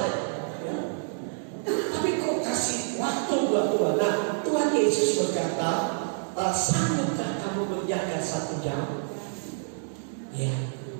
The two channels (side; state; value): left; silent; digital silence